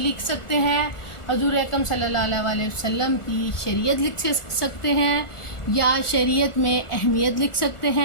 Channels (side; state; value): right; late; 1.4 ms